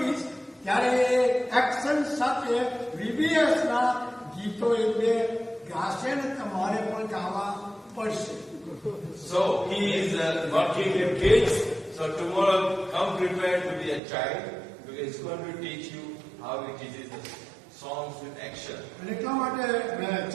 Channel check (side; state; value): left; drops out; at 14.0 s